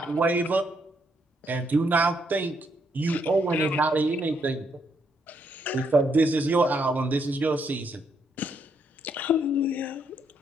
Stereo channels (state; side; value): normal; both; correlation 0.75